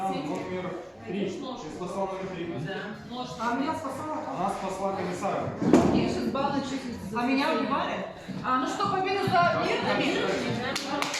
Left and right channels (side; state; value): both; identical; correlation 1.00